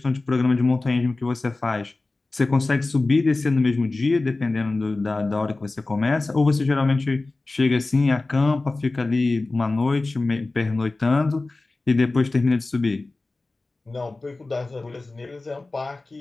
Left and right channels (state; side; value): quieter; right; 3.3 dB